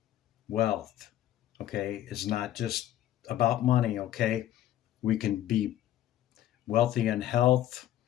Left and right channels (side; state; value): right; quieter; 12.6 dB